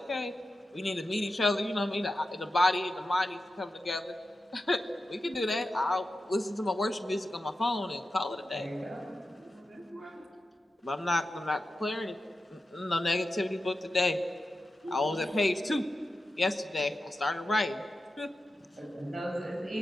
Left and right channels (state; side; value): normal; both; correlation 0.91